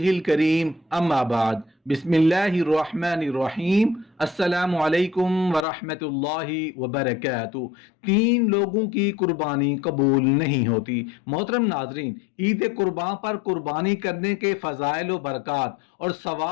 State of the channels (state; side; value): drops out; right; at 5.7 s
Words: करीम अम्मा बाद बिस्मिल्लाहिर रहमानिर रहीम अस्सलामु अलैकुम व रहमतुल्लाहि व बरकातुहू। तीन लोगों की कुर्बानी कबूल नहीं होती। मोहतरम नाजरीन, ईद कुर्बान पर कुर्बानी करने के फ़ज़ाइल व बरक़ात और